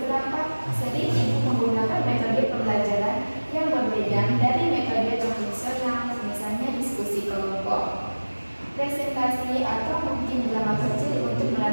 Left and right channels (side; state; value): both; inverted; correlation -1.00